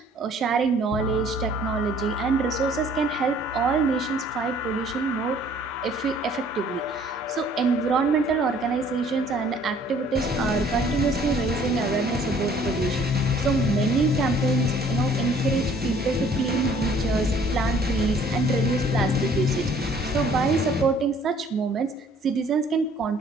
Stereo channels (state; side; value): normal; both; correlation 0.57